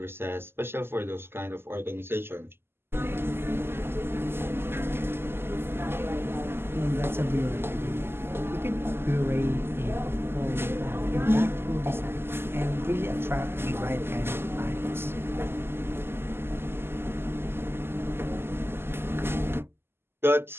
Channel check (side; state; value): left; late; 0.12 ms